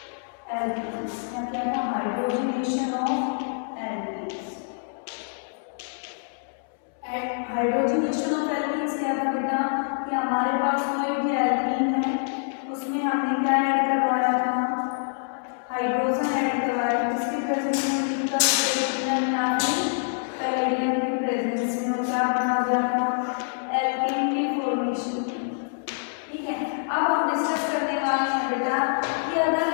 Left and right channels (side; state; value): right; silent; 61 dB below the other